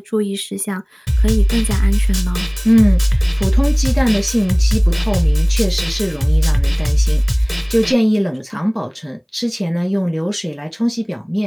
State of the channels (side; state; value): both; identical; correlation 1.00